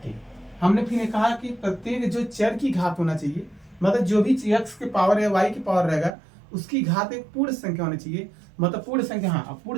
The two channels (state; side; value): drops out; left; at 6.1 s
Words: ठीक, हमने फिर कहा कि प्रत्येक जो चर की घात होना चाहिए, मतलब जो भी एक्स के पावर या वाई की पावर रहेगा उसकी घात एक पूर्ण संख्या होनी चाहिए। मतलब पूर्ण संख्या, हाँ, अब